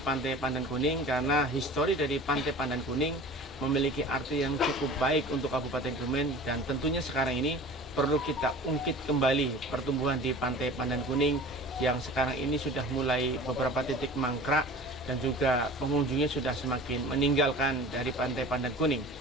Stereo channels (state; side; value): normal; both; correlation 0.41